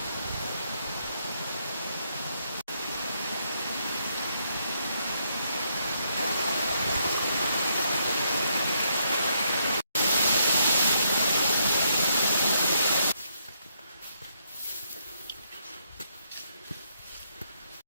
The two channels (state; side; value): inverted; both; correlation -0.76